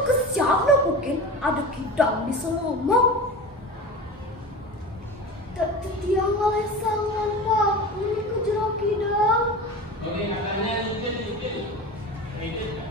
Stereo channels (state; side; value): normal; both; correlation 0.31